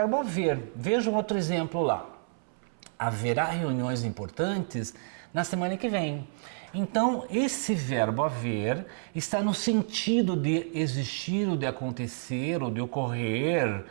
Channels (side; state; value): left; silent; 58 dB below the other